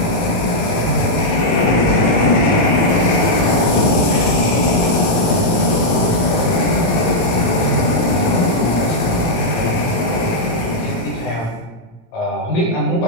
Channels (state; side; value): late; right; 18 ms